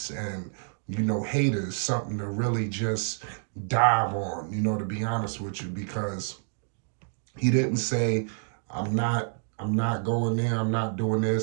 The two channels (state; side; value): silent; left; digital silence